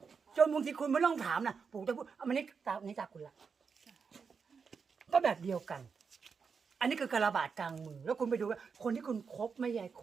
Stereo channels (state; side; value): quieter; left; 5.7 dB